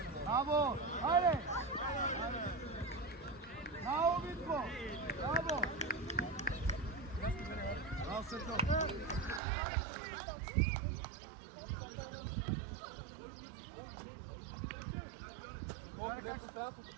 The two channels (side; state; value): left; drops out; at 9.4 s